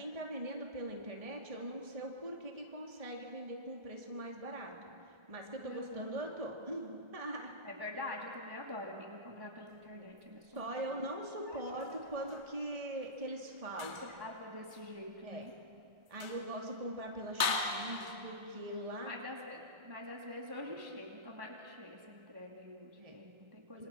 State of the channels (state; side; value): late; left; 1.3 ms